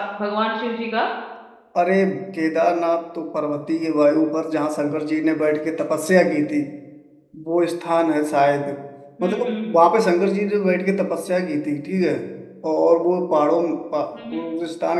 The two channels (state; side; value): identical; both; correlation 1.00